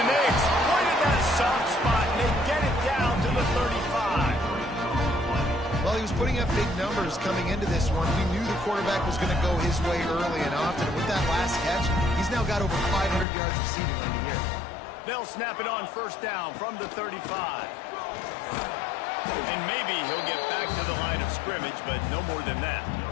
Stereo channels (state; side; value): drops out; right; at 13.2 s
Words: they exploited that soft spot, and they get it down to the 35. Well, he was putting up big numbers coming into this one. We knew the quarterback was going to go his way early and often. And with that last catch, he's now got over 500 yards receiving on the year. They'll snap it on 1st down from the 35. And maybe he'll get back to the line of scrimmage, but no more than that.